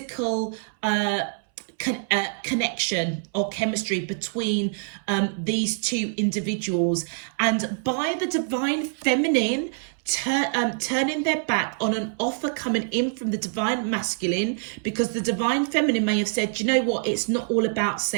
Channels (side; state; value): left; silent; 62 dB below the other